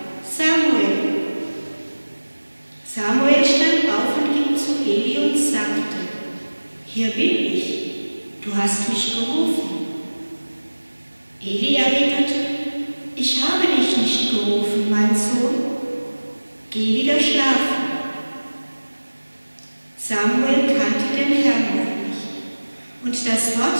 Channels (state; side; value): inverted; both; correlation -1.00